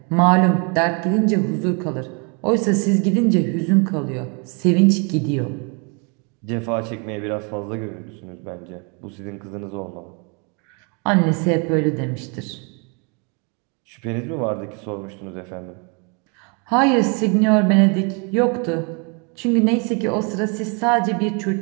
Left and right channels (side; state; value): left; quieter; 34.7 dB